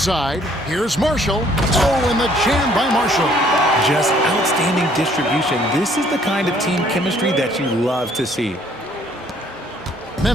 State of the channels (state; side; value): normal; both; correlation 0.62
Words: here's Marshall. Oh, and the jam by Marshall. Just outstanding distribution. This is the kind of team chemistry that you love to see.